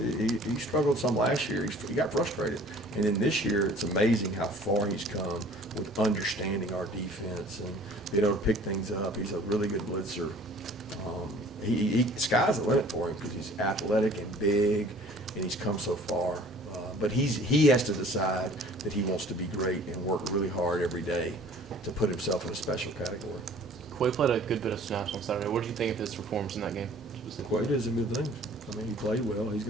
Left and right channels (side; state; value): both; normal; correlation 0.50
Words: he struggled some last year. He got frustrated. And then this year, it's amazing how far he's come with understanding our defense and being able to pick things up. He's a really good blitzer. Sky's the limit for him because he's athletic and big, and he's come so far. But he has to decide that he wants to be great and work really hard every day to put himself in a special category. Quay played a good bit of snaps on Saturday. What did you think of his performance in that game specifically? Quay did some good things. I mean, he played well. He's